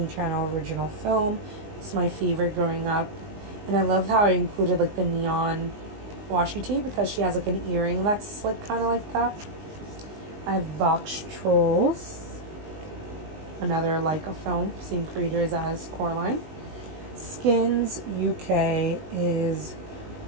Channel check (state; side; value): late; left; 19 ms